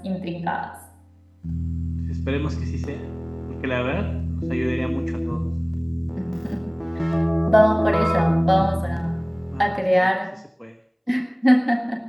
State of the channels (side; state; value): both; identical; correlation 1.00